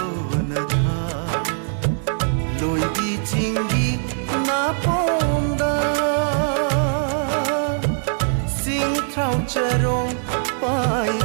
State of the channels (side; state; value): left; silent; digital silence